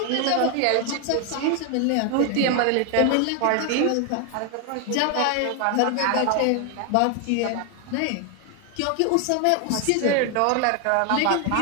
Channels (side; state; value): both; different; correlation 0.00